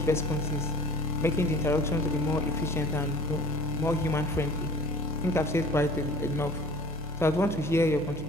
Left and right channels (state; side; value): normal; both; correlation 0.47